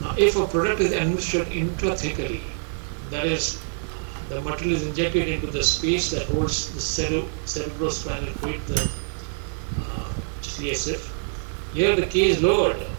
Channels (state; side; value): silent; left; 62 dB below the other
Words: Now, if a product is administered intrathecally, that is, the material is injected into the space that holds the cerebrospinal fluid, the CSF, here the K is lowered